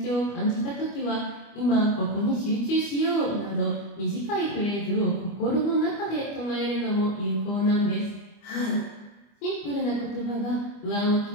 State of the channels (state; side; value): late; right; 25 ms